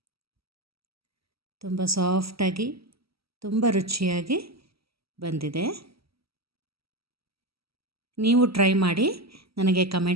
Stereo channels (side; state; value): left; late; 0.76 ms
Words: ತುಂಬ ಸಾಫ್ಟಾಗಿ, ತುಂಬ ರುಚಿಯಾಗಿ ಬಂದಿದೆ. ನೀವು ಟ್ರೈ ಮಾಡಿ ನನಗೆ